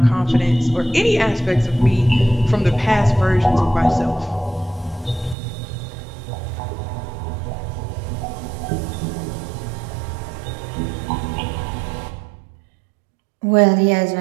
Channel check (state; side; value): drops out; left; at 5.4 s